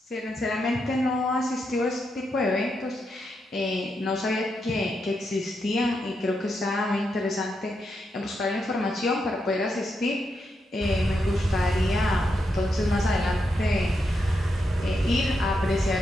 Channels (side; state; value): both; normal; correlation 0.83